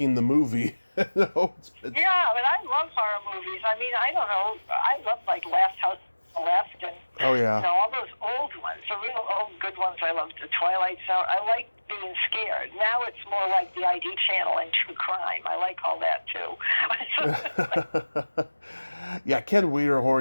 the movie. Yeah, but I love horror movies. I mean, I don't know. I love Last House on the Left and all those old ones, the real old good ones. I love the Twilight Zone. I like being scared. Now it's more like the ID channel and true crime. I like all that too. Yeah, Ken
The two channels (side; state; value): both; inverted; correlation -1.00